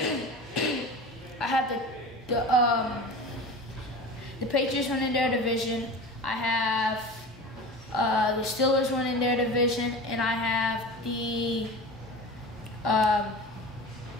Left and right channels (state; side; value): normal; both; correlation 0.33